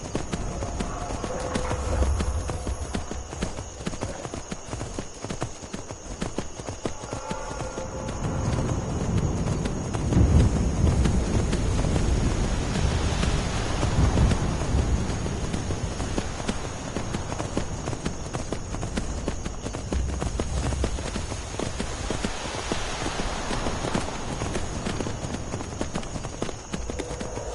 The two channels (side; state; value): both; identical; correlation 1.00